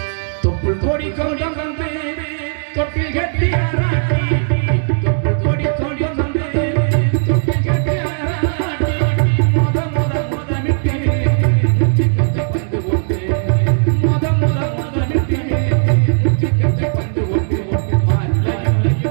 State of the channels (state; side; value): silent; left; digital silence